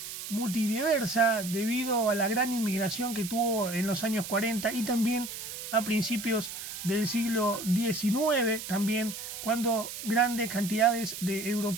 multidiversa debido a la gran inmigración que tuvo en los años 40 y también a principios del siglo XIX, también cuando grandes cantidades de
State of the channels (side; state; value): right; noise; hiss, 9 dB below the sound